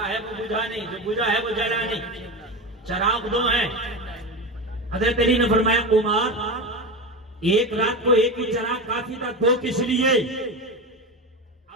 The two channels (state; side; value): normal; both; correlation 0.22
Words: ہے وہ بجھا نہیں, جو بجھا ہے وہ جلا نہیں. چراغ دو ہیں. حضرت علی نے فرمایا عمر ایک رات کو ایک ہی چراغ کافی تھا, دو کس لیے؟